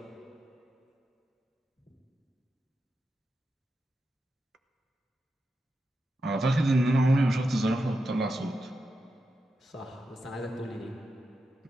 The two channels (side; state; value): both; normal; correlation 0.88